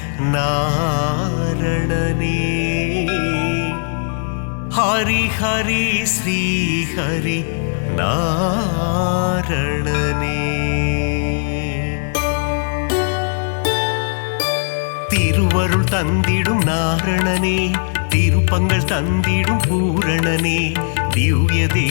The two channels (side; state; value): right; silent; digital silence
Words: நாரணனே ஹரி ஹரி ஸ்ரீ ஹரி நாரணனே திருவருள் தந்திடும் நாரணனே திருப்பங்கள் தந்திடும் பூரணனே திவ்ய